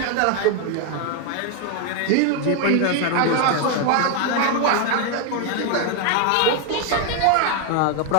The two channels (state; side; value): different; both; correlation 0.01